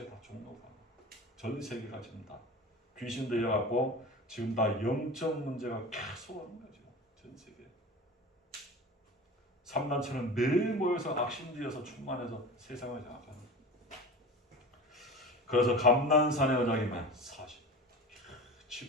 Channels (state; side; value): normal; both; correlation 0.33